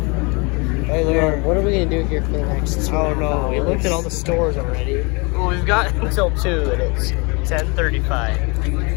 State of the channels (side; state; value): right; quieter; 29.5 dB